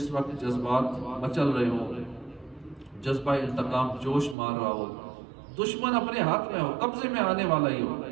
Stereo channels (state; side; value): drops out; left; at 4.4 s